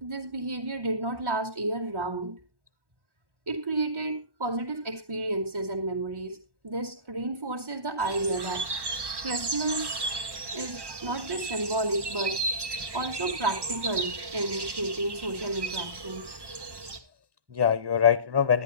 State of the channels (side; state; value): left; late; 1.1 ms